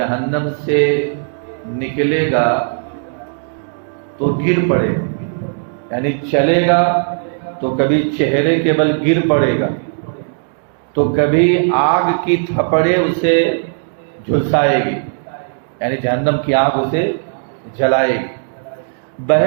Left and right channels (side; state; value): left; silent; digital silence